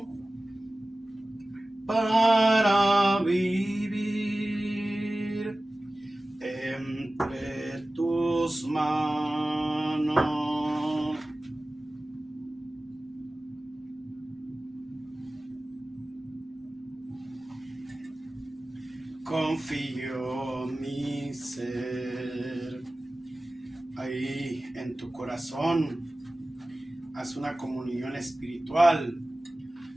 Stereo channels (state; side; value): normal; both; correlation 0.97